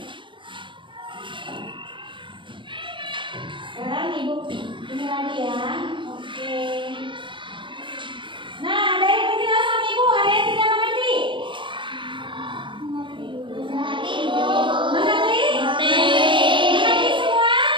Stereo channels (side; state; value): left; late; 0.24 ms